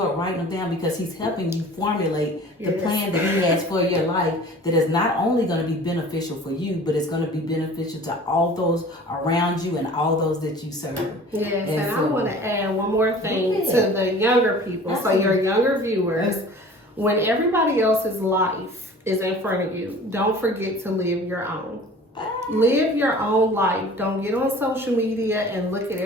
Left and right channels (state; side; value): normal; both; correlation 0.44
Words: writing them down, because He's helping you formulate the plan that He has for your life, that is not only going to be beneficial for you, but it's going to be beneficial to all those around you and all those that you serve. Yes, and so, I want to add one more thing to the younger people. Absolutely. So your younger viewers, when everybody else's life is in front of you, don't forget to live your own. Live your own life. Don't get on social media and look at